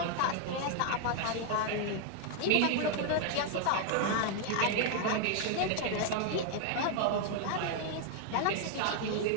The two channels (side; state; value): both; different; correlation 0.00